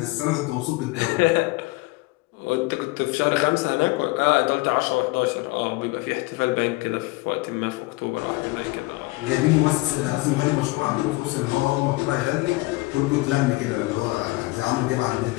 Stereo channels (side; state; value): right; quieter; 22.5 dB